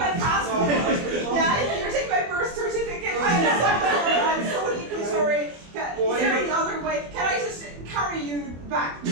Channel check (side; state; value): left; late; 24 ms